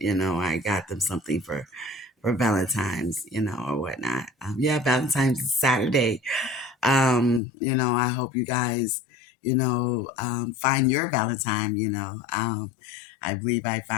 I got them something for Valentine's, or whatnot. Yeah, Valentine's is Saturday. I hope you guys, find your Valentine. I believe I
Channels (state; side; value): drops out; right; at 7.4 s